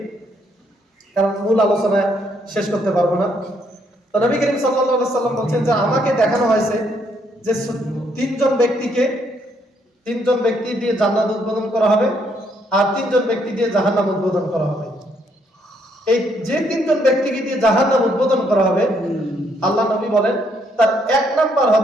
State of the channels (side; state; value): both; normal; correlation 0.71